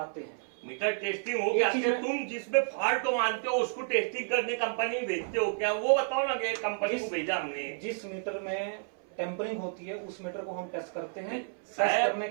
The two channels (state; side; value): silent; left; 57 dB below the other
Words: हैं। मीटर टेस्टिंग हो गया, तुम जिसमें फॉल्ट को मानते हो उसको टेस्टिंग करने कंपनी भेजते हो क्या? वो बताओ ना कि कंपनी को भेजा हमने। जिस मीटर में टेम्परिंग होती है उस मीटर को हम टेस्ट करते हैं। टेस्ट करने